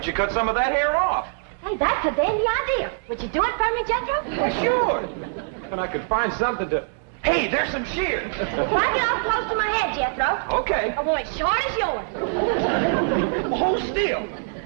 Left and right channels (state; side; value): silent; left; digital silence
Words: you cut some of that hair off? Hey, that's a dandy idea. Would you do it for me, Jethro? Well, sure. And I could find something to... Hey, there's some shears. Why get off close to my head, Jethro? Okay. I want it short as yours. Well, hold still.